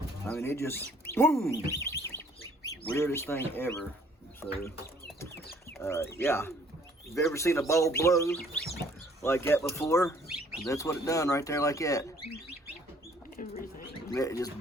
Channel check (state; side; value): normal; both; correlation 0.59